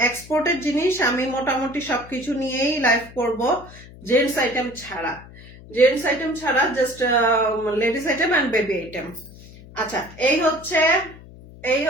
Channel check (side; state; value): left; noise; hum, 19 dB below the sound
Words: এক্সপোর্টের জিনিস আমি মোটামুটি সবকিছু নিয়েই লাইভ করব, জেন্টস আইটেম ছাড়া, জেন্টস আইটেম ছাড়া, just ladies item and baby item. আচ্ছা এই